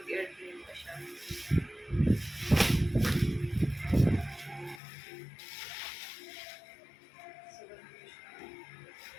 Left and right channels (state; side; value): drops out; right; at 4.8 s